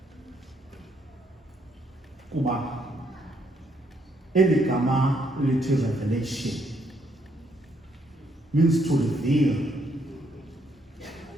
kuba eli gama lithi revelation means to reveal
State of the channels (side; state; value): both; normal; correlation 0.72